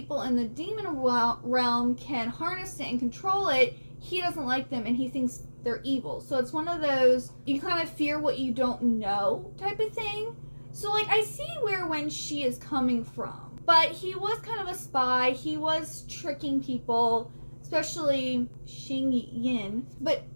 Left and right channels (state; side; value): inverted; both; correlation -1.00